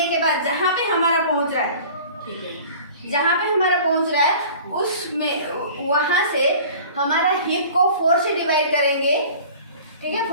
के बाद जहाँ पे हमारा पहुँच रहा है, जहाँ पे हमारा पहुँच रहा है उसमें वहाँ से हमारा हिप को 4 से डिवाइड करेंगे। ठीक है,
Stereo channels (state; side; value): inverted; both; correlation -0.44